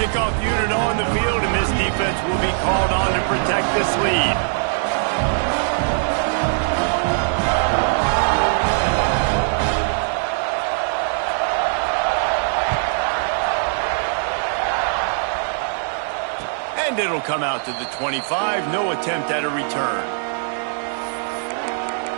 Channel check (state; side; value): silent; left; digital silence